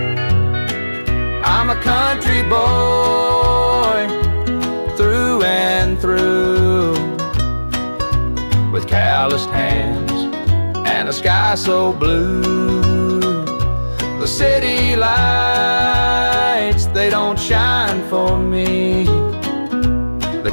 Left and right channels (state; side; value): inverted; both; correlation -1.00